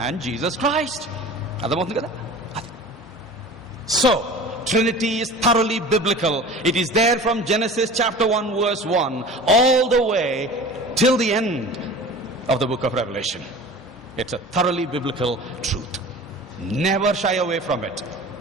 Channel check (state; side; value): normal; both; correlation 0.39